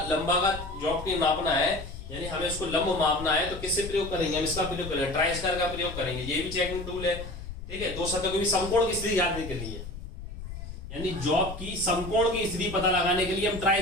का जॉब की मापना है, यानी हमें उसको लंब मापना है, तो किससे प्रयोग करेंगे, हम इसका प्रयोग करेंगे, ट्राई स्क्वायर का प्रयोग करेंगे। ये भी चेकिंग टूल है, ठीक है। दो सतहों के भी समकोण की स्थिति जानने के लिए, यानी जॉब की समकोण की स्थिति पता लगाने के लिए हम ट्राई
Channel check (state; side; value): noise; left; rumble, 11 dB below the sound